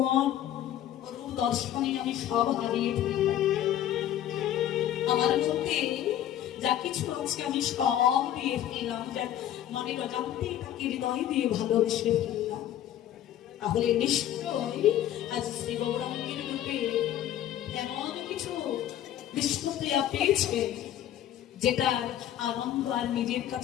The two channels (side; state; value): right; quieter; 11.6 dB